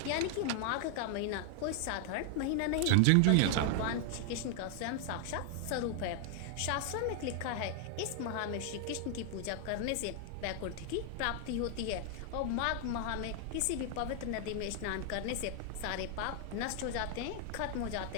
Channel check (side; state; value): both; different; correlation 0.00